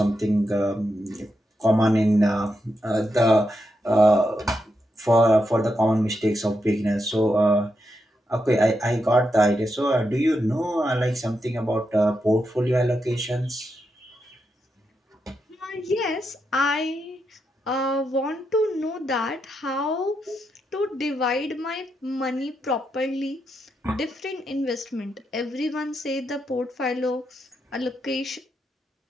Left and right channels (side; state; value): both; normal; correlation 0.84